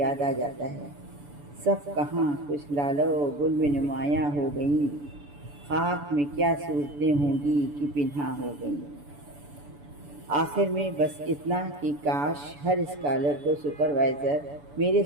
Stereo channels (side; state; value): left; late; 7.0 ms